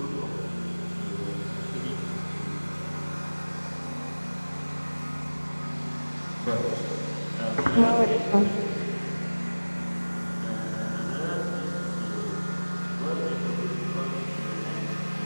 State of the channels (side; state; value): both; inverted; correlation -1.00